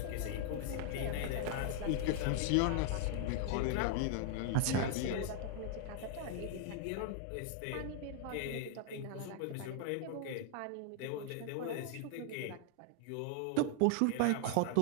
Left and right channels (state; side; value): different; both; correlation 0.00